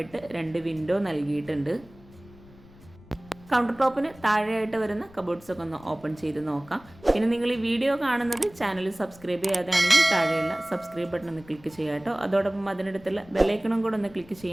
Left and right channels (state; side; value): noise; left; rumble, 23 dB below the sound